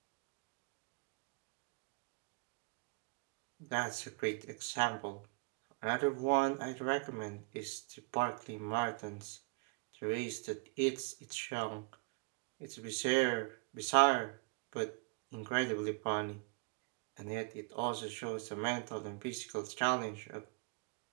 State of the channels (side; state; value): left; quieter; 31.1 dB